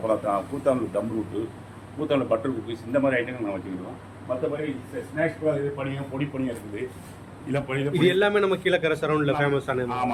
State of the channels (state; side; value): identical; both; correlation 1.00